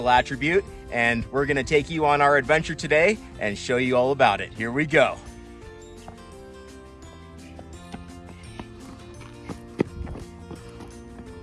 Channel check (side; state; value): both; identical; correlation 1.00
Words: attribute, and we're gonna take you on our adventure today and show you all about it. Here we go.